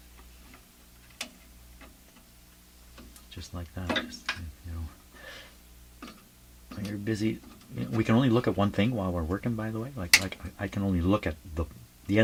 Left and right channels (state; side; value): identical; both; correlation 1.00